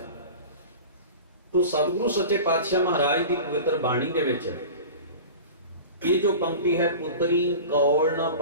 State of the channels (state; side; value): inverted; both; correlation -0.35